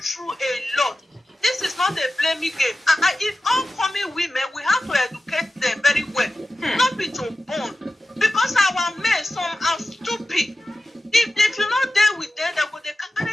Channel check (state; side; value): normal; both; correlation 0.94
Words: a lot. This is not a blaming game. If oncoming women, we have to educate them very well. Not be too born. Because our men, some are stupid. If you're not there with them, they